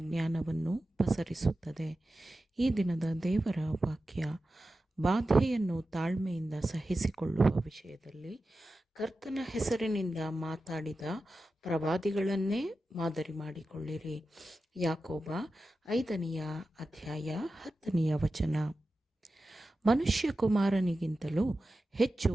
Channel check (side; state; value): both; normal; correlation 0.93